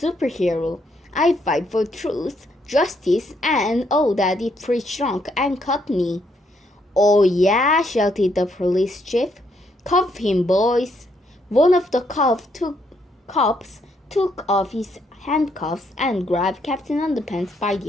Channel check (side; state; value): both; normal; correlation 0.73